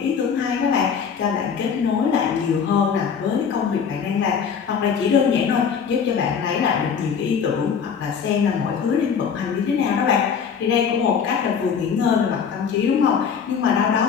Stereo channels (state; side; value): quieter; right; 6.8 dB